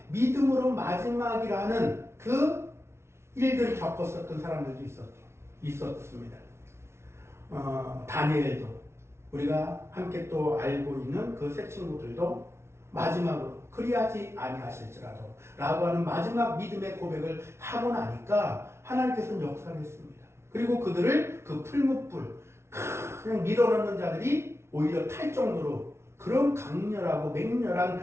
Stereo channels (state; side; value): late; left; 0.13 ms